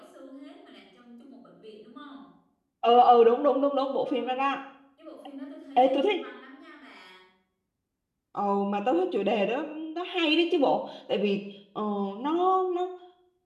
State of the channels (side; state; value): both; identical; correlation 1.00